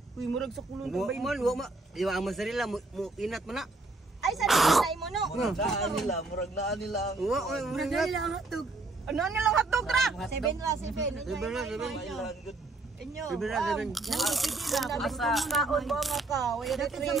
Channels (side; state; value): left; quieter; 3.2 dB